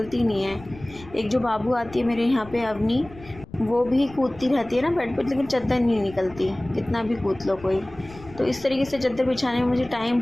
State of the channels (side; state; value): left; noise; rumble, 19 dB below the sound